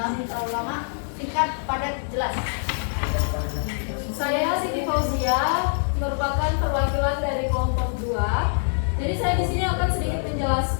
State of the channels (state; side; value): silent; right; digital silence